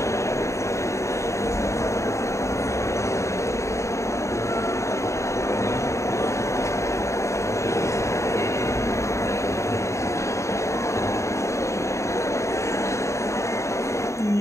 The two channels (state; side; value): late; right; 0.14 ms